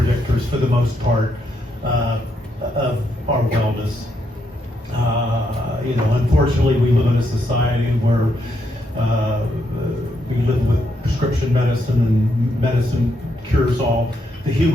for the most part of our wellness. Unfortunately, we live in a society where we live with prescription medicine, and medicine cures all. The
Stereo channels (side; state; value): both; normal; correlation 0.78